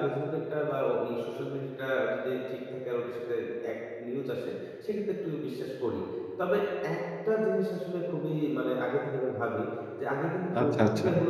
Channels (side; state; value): both; identical; correlation 1.00